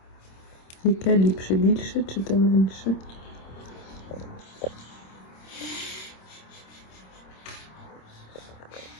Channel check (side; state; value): right; late; 26 ms